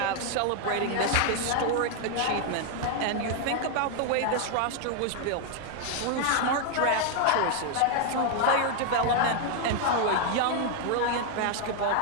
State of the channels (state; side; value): different; both; correlation 0.00